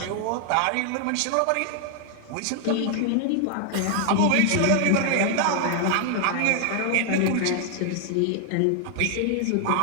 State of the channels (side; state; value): both; different; correlation 0.00